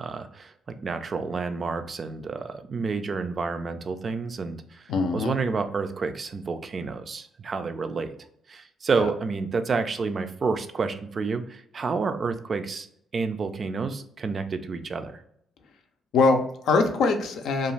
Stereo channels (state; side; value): normal; both; correlation 0.74